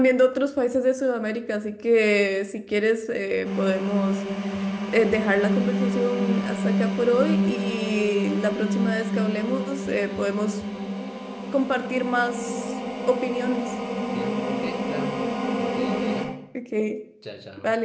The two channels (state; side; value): identical; both; correlation 1.00